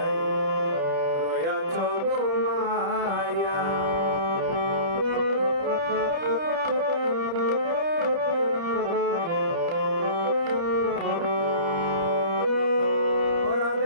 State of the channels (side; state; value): left; late; 30 ms